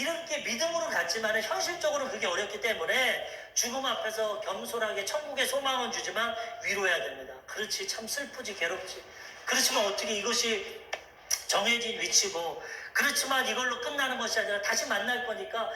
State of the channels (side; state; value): both; identical; correlation 1.00